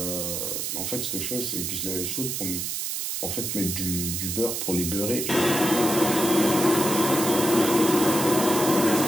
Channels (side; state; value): right; noise; hiss, 3 dB below the sound